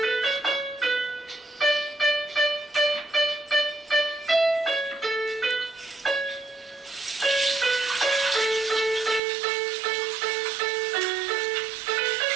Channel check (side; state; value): left; drops out; at 9.2 s